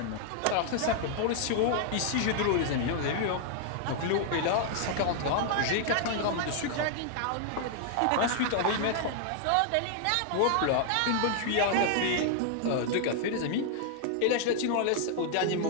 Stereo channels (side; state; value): both; different; correlation -0.01